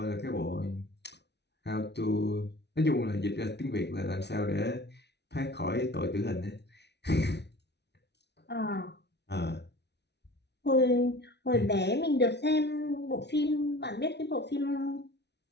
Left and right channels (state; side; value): late; right; 0.50 ms